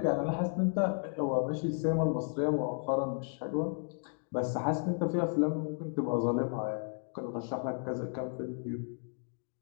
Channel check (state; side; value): silent; right; 55 dB below the other